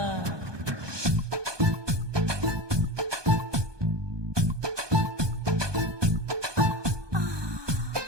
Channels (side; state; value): left; late; 1.2 ms